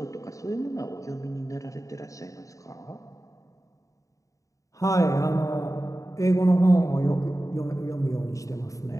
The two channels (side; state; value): right; late; 0.16 ms